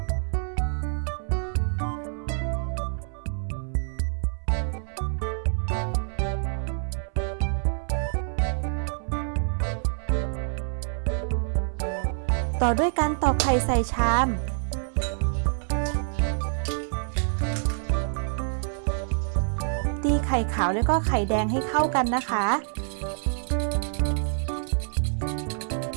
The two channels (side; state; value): left; silent; 60 dB below the other